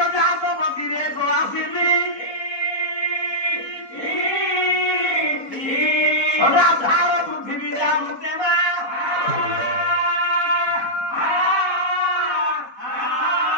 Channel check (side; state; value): right; late; 4.1 ms